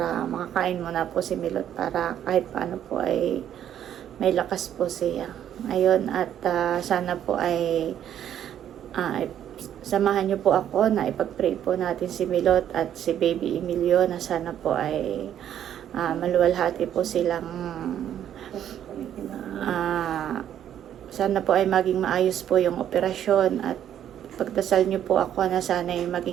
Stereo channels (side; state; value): left; quieter; 10.3 dB